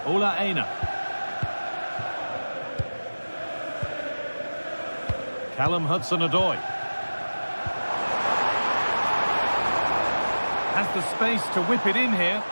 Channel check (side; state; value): both; inverted; correlation -1.00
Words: Ola Aina. Callum Hudson-Odoi. Has the space to whip it in here.